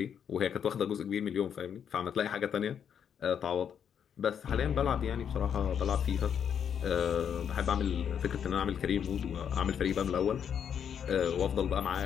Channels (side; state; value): right; quieter; 8.1 dB